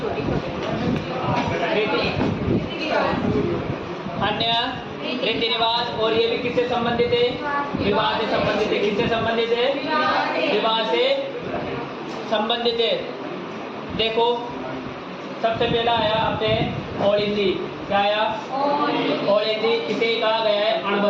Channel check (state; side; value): identical; both; correlation 1.00